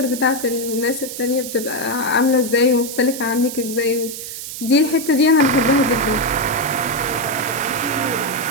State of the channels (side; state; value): right; noise; hiss, 9 dB below the sound